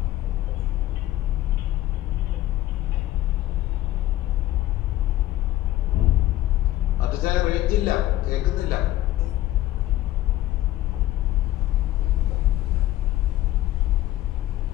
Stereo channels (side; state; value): right; quieter; 15.0 dB